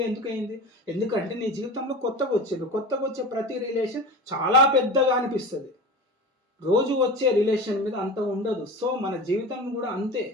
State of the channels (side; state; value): both; normal; correlation 0.31